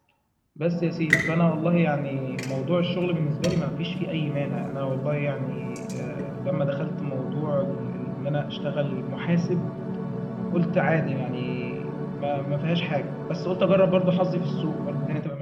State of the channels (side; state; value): both; identical; correlation 1.00